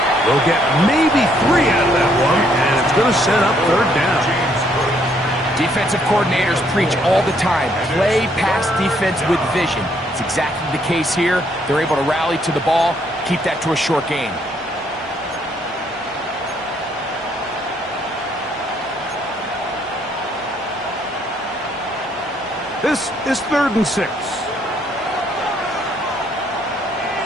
They'll get maybe 3 out of that one, and it's going to set up 3rd down. Defensive coordinators preach all the time, play pass defense with vision. It's exactly the case here. They're able to rally to the ball, keep that to a short gain. This is 3rd and 6.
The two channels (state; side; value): normal; both; correlation 0.69